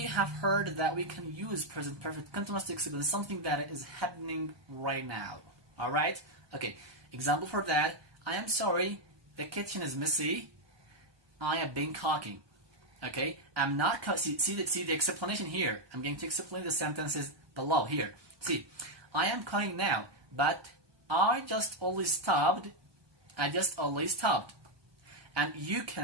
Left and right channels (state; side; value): late; left; 1.2 ms